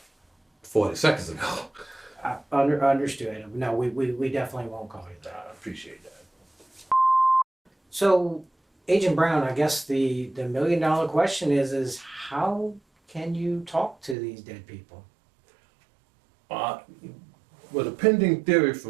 40 seconds ago. I understood. No, we definitely won't call you that. I appreciate that. So, Agent Brown, I guess the $1 million question is how can you talk to these dead people? Well, the pending theory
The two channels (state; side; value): drops out; left; at 14.2 s